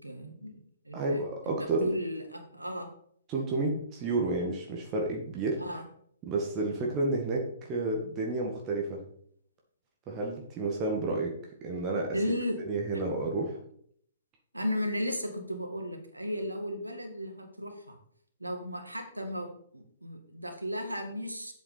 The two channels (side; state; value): both; inverted; correlation -0.51